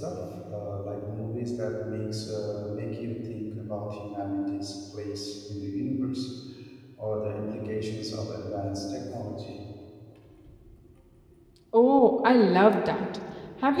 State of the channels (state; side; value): identical; both; correlation 1.00